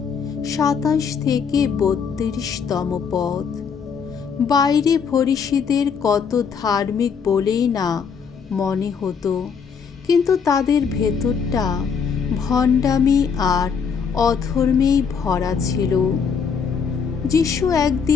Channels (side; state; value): right; quieter; 6.3 dB